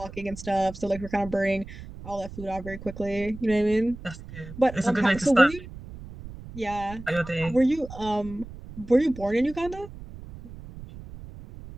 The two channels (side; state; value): right; noise; rumble, 14 dB below the sound